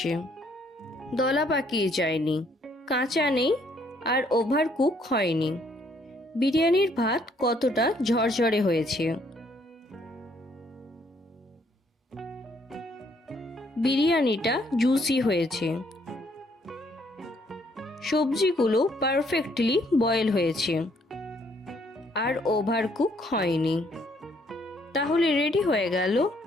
দলা পাকিয়ে যায়নি, কাঁচা নেই আর ওভার কুক হয়নি। বিরিয়ানির ভাত কতটা ঝরঝরে হয়েছে। বিরিয়ানিটা জুসি হয়েছে, সবজিগুলো পারফেক্টলি বয়েল হয়েছে আর ওভার কুক হয়নি। তাহলে রেডি হয়ে গেল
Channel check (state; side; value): normal; both; correlation 0.67